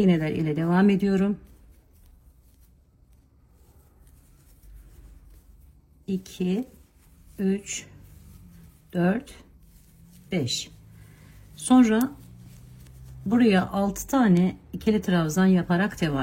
ile devam ediyorum. 2 3 4 5. Sonra buraya 6 tane ikili trabzan yaparak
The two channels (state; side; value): identical; both; correlation 1.00